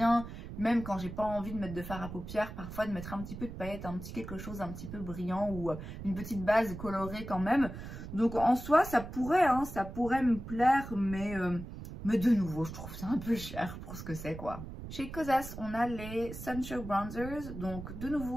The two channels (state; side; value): noise; right; rumble, 10 dB below the sound